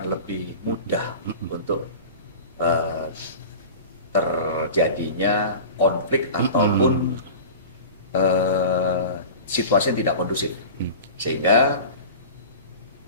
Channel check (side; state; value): both; inverted; correlation -0.34